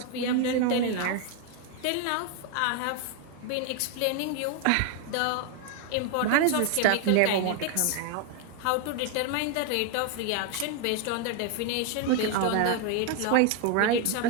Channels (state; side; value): different; both; correlation 0.01